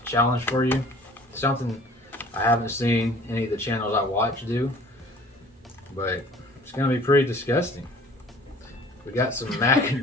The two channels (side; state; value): both; normal; correlation 0.49